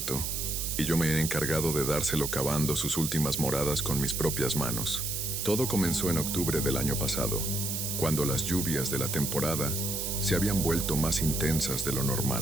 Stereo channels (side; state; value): right; noise; hiss, 2 dB below the sound